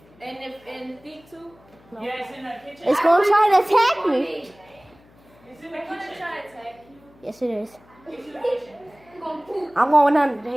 And the thing too. Yeah, it's in the kitchen. It's gonna try to attack me. It's in the I'm gonna kitchen. try to attack you. Yes, it is. It's in the kitchen. I'm going to poop. I'm going under the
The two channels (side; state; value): left; noise; hum, 28 dB below the sound